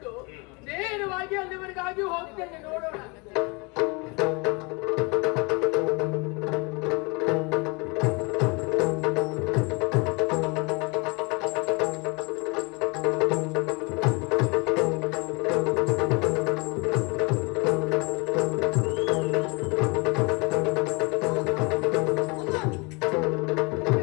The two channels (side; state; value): right; quieter; 29.2 dB